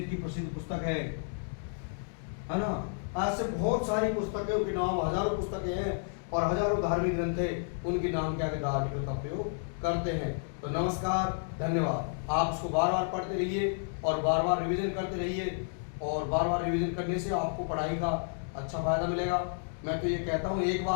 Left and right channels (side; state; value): right; silent; digital silence